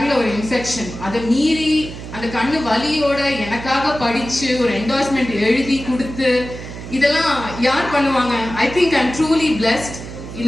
ஒரு இன்ஃபெக்ஷன், அதை மீறி அந்த கண்ணு வலியோட எனக்காக படிச்சு ஒரு என்டோர்ஸ்மெண்ட் எழுதி கொடுத்து, இதெல்லாம் யார் பண்ணுவாங்க? I think I am truly blessed.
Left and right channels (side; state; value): right; noise; hum, 11 dB below the sound